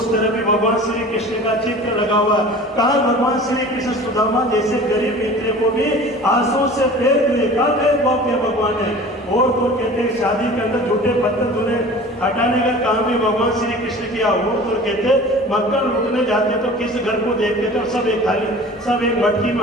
तरह भी भगवान श्री कृष्ण का चित्र लगा हुआ है। कहा भगवान श्री कृष्ण सुदामा जैसे गरीब मित्र को भी आंसू से फेर दिए, कहा भेदभाव किया भगवान ने। और तो कहते हैं शादी के अंदर झूठे पत्थर धुने हटाने का काम भी भगवान श्री कृष्ण किया। और तो कहते मक्खन लूटने जाते तो किस घर को देखते थे और सब एक थाली, सब एक मटकी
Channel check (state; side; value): normal; both; correlation 0.41